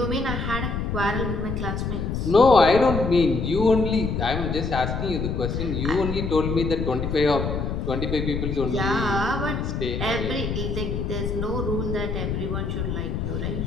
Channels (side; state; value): left; noise; rumble, 2 dB below the sound